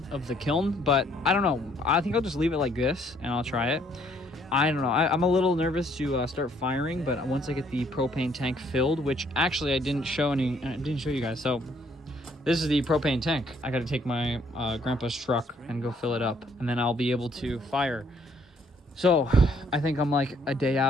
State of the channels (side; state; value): both; normal; correlation 0.65